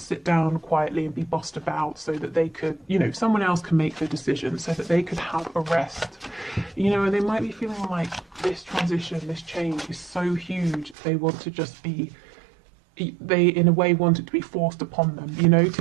sit down quietly and be bossed about so that they could, you know, someone else can make the decision so that they could have a rest. You know, and they might be feeling like this transition, this change is so huge, they want to just be, they in a way want it to be forced upon them, you know,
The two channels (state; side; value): drops out; left; at 11.0 s